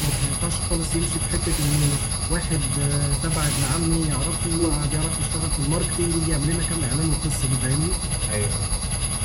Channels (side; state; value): both; identical; correlation 1.00